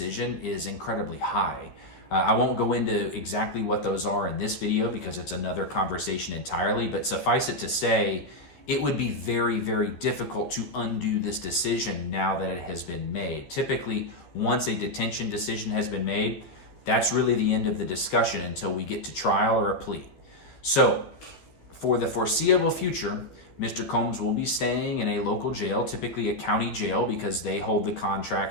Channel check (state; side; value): late; right; 13 ms